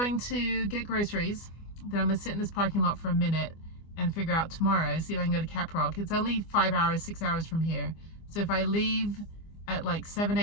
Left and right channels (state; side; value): late; right; 25 ms